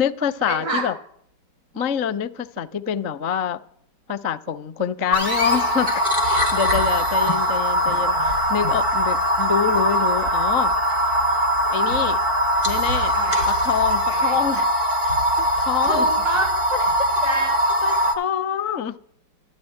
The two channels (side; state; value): left; late; 4.5 ms